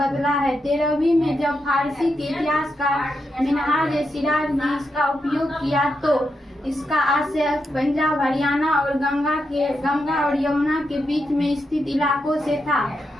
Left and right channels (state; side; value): normal; both; correlation 0.84